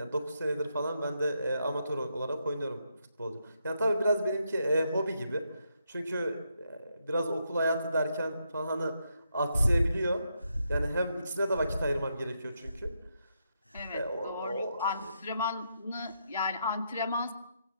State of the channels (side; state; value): both; inverted; correlation -0.80